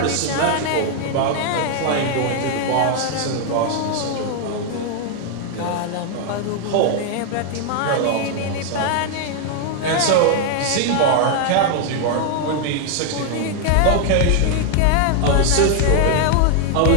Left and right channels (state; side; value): different; both; correlation 0.00